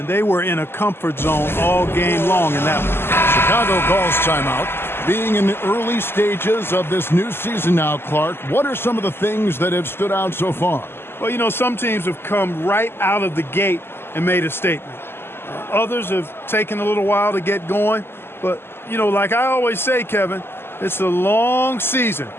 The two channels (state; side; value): late; right; 0.11 ms